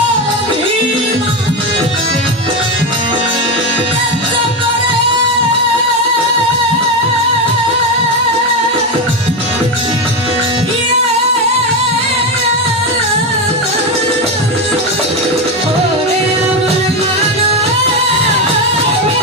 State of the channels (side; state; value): both; normal; correlation 0.13